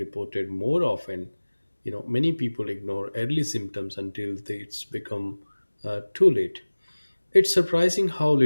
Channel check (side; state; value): both; inverted; correlation -1.00